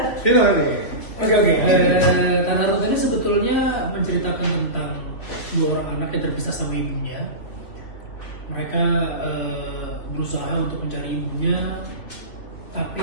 Vino nih. Oke. Tanah Runtuh ini sebetulnya menceritakan tentang dua orang anak yang terpisah sama ibunya. Mereka berusaha untuk mencari ibunya, tapi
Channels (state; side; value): late; right; 2.9 ms